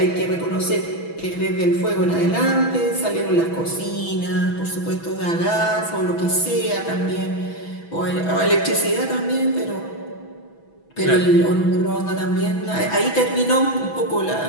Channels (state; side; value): late; right; 6.1 ms